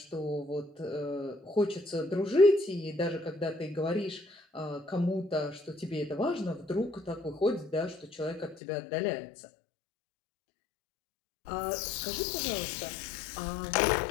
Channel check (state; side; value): drops out; right; at 8.6 s